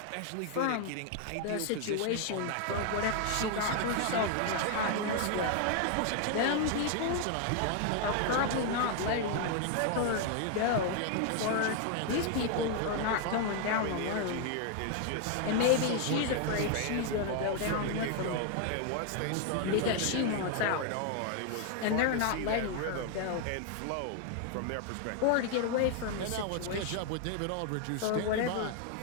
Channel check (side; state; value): both; different; correlation 0.00